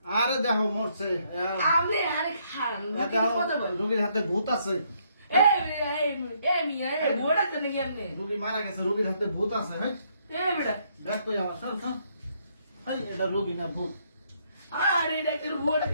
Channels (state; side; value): inverted; both; correlation -0.72